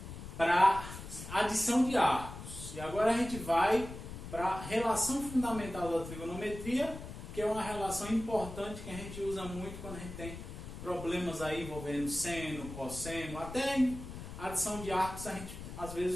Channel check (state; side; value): noise; left; rumble, 11 dB below the sound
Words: para adição de arcos. E agora a gente vai para a relação fundamental da trigonometria, que é uma relação importante que a gente usa muito quando a gente tem problemas aí envolvendo seno, cosseno, até em adição de arcos a gente às